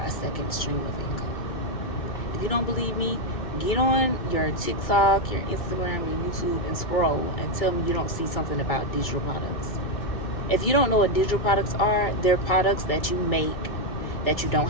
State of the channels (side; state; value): right; late; 2.2 ms